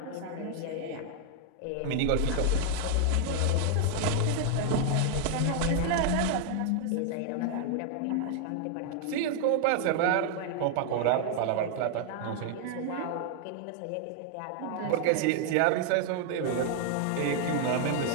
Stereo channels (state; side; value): different; both; correlation 0.00